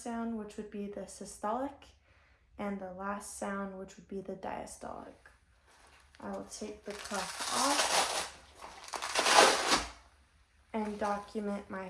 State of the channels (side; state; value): both; identical; correlation 1.00